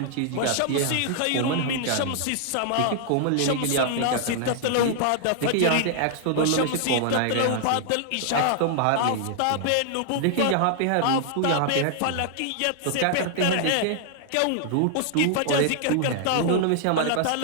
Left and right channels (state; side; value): different; both; correlation -0.01